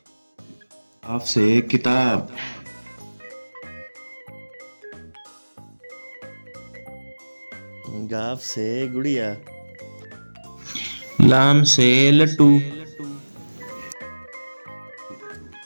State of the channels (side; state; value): both; inverted; correlation -1.00